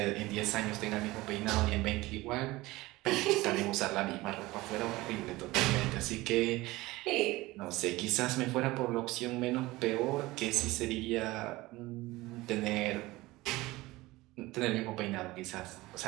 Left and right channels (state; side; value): quieter; left; 19.7 dB